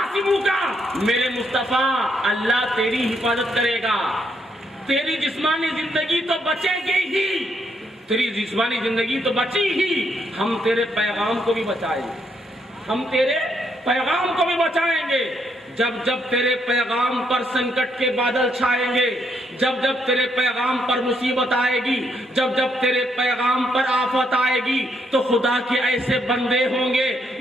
میرے مصطفیٰ اللہ تیری حفاظت کرے گا۔ تیری جسمانی زندگی تو بچے گی ہی، تیری جسمانی زندگی تو بچی ہی، ہم تیرے پیغام کو بھی بچائیں گے، ہم تیرے پیغام کو بھی بچائیں گے۔ جب جب تیرے پیغام پر سنکٹ کے بادل چھائیں گے، جب جب تیرے پیغام پر مصیبت آئے گی، جب جب تیرے پیغام پر آفت آئے گی، تو خدا کے ایسے بندے ہوں گے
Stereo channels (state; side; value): normal; both; correlation 0.75